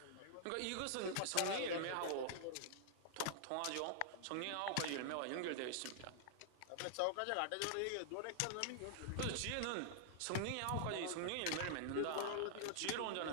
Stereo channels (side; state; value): both; different; correlation -0.01